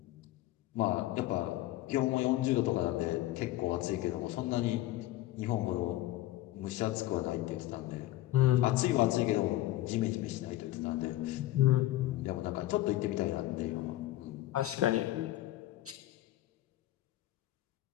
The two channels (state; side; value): quieter; right; 15.9 dB